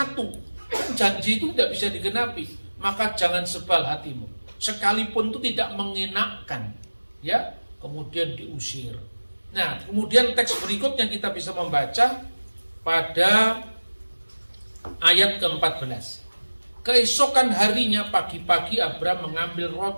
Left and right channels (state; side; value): inverted; both; correlation -1.00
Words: kan janji itu tidak bisa digenapi. Maka jangan sebal hatimu, sekalipun itu tidak mengenakkan, ya, kemudian diusir. Nah, kemudian teks berikutnya kita bisa membaca pada ayat ke-14. Keesokan harinya pagi-pagi Abraham mengambil